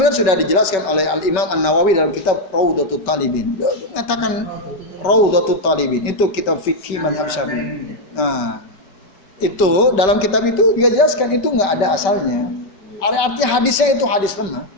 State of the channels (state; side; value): late; right; 5.2 ms